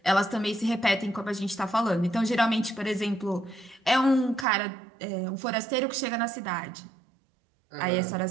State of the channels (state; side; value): drops out; left; at 4.5 s